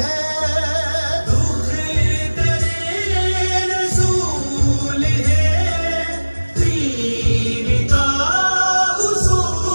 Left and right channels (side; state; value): both; inverted; correlation -1.00